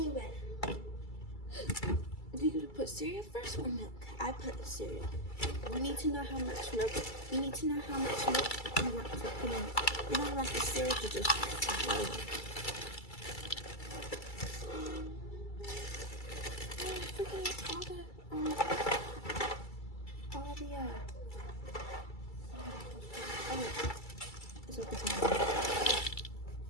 well. Do you put cereal first or milk? I put cereal. We need to know how much milk. We need to know how much milk you want to put in. We don't want the cereal to just flow. It's at the bottom.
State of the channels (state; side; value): late; right; 2.3 ms